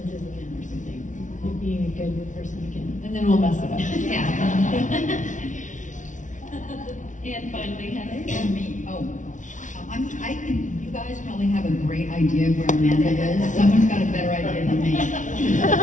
again or something, like being a good person again. And then we'll mess it up. Yeah. And finally, Heather. And me, I think you guys probably have a great idea of where Amanda is. Someone's got a better idea than me.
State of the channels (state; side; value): late; right; 0.37 ms